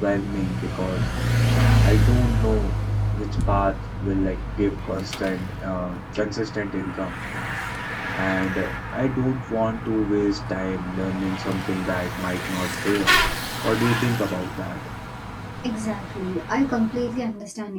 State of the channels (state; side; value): identical; both; correlation 1.00